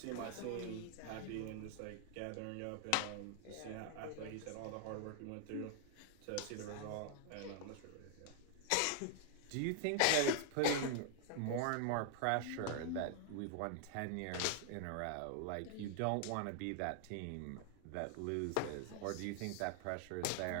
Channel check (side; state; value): both; different; correlation 0.00